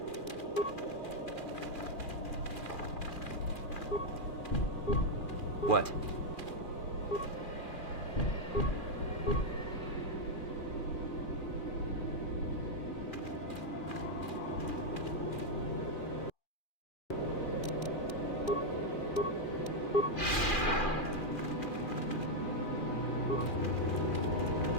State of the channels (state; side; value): late; right; 2.4 ms